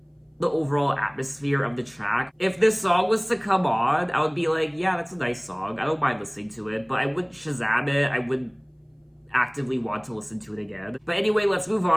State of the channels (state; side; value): identical; both; correlation 1.00